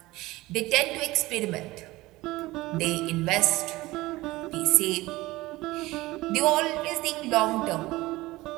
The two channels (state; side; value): quieter; left; 19.3 dB